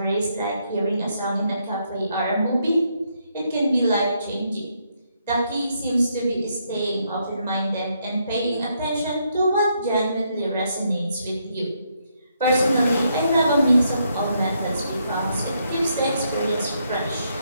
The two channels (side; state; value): both; inverted; correlation -0.76